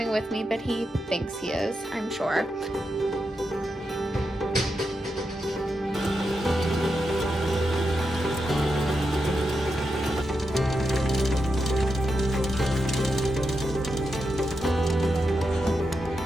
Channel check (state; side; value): normal; both; correlation 0.86